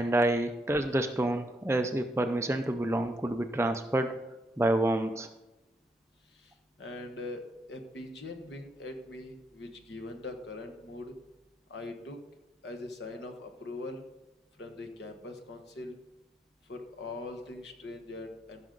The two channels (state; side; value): normal; both; correlation 0.77